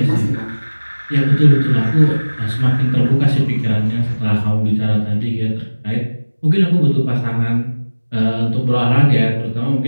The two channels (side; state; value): both; inverted; correlation -1.00